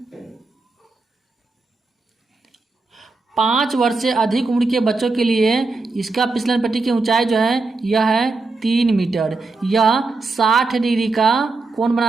5 वर्ष से अधिक उम्र के बच्चों के लिए इसका फिसलन पट्टी की ऊंचाई जो है यह है 3 मीटर। यह 60 डिग्री का कोण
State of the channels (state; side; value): quieter; left; 3.7 dB